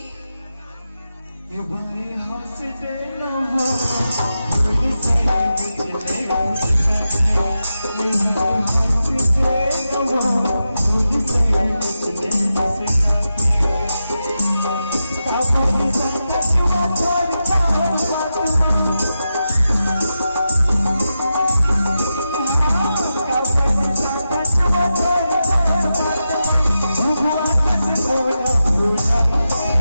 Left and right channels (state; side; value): inverted; both; correlation -0.90